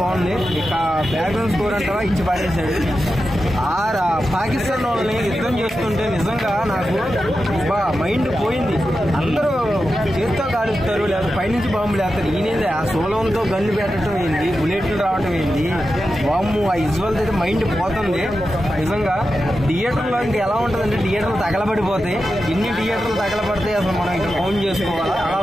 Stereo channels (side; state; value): both; normal; correlation 0.90